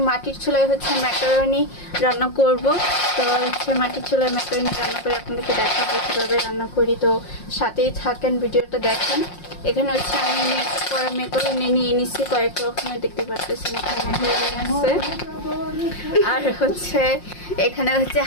মাটির চুলায় ম্যাকারনি রান্না করব। তো মাটির চুলায় ম্যাকারনি রান্না করে আপনাদেরকে দেখাবো কীভাবে রান্না করি। তো সাথেই থাকেন, ভিডিওটা দেখেন। এখানে আমি মিক্স করা ম্যাকারনি নিয়ে নিচ্ছি কয়েক রকমের, দেখতে পারতেছেন এখানে আছে। আর এখানে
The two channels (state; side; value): late; right; 5.6 ms